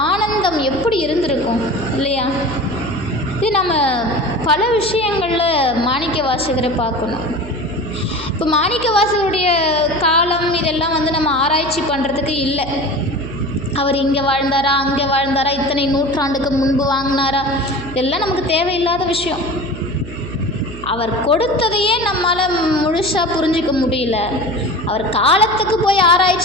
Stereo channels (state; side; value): noise; right; hum, 12 dB below the sound